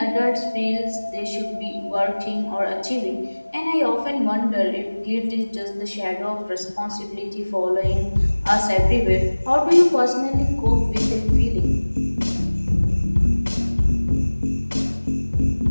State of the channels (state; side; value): inverted; both; correlation -1.00